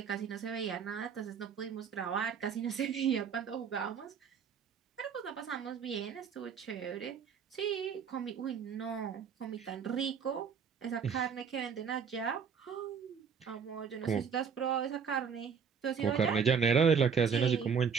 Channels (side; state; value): left; quieter; 6.7 dB